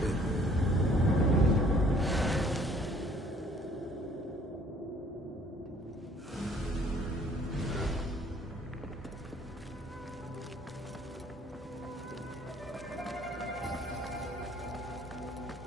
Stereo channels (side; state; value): both; normal; correlation 0.58